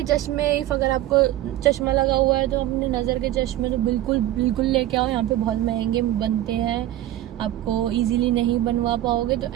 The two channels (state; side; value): quieter; left; 14.0 dB